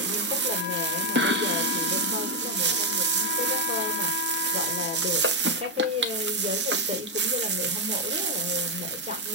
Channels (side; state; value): both; normal; correlation 0.03